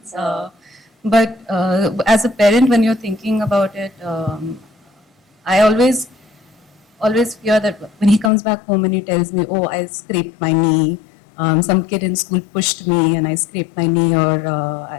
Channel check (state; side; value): drops out; right; at 8.3 s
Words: But as a parent, when you're thinking about it, I always fear that when he comes back home and he tells me, "Oh, I scraped my knee. Some kid in school pushed me and I scraped my knee, or